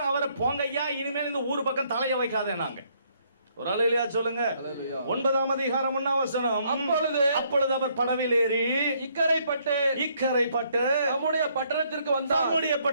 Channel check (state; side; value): inverted; both; correlation -0.69